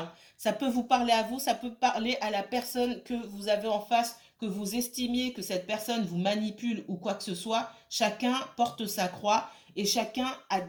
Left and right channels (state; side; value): identical; both; correlation 1.00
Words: Ça peut vous parler à vous, ça peut parler à la personne que vous avez en face, que vous estimiez que cette personne vous manipule ou quoi que ce soit. Chacun porte sa croix et chacun a